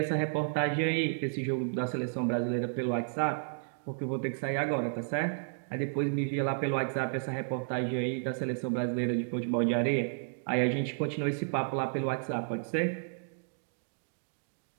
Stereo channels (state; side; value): silent; left; digital silence